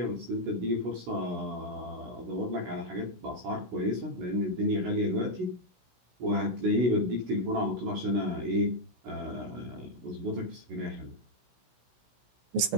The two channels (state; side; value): late; left; 16 ms